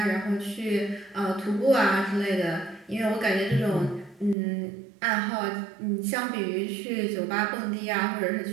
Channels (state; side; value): drops out; left; at 4.4 s